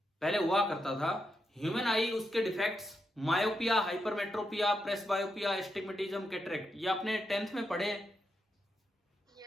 पहले हुआ करता था। ह्यूमन आई, उसके defects, myopia, hypermetropia, presbyopia, astigmatism, cataract, ये आपने 10th में पढ़े हैं।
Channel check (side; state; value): both; normal; correlation 0.84